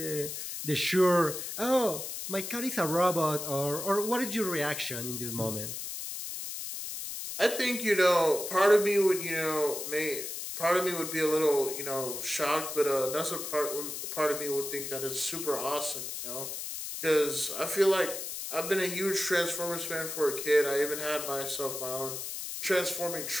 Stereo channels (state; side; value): noise; left; hiss, 6 dB below the sound